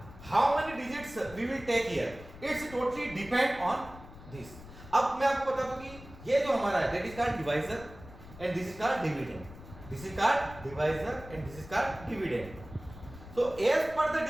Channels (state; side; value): noise; left; rumble, 17 dB below the sound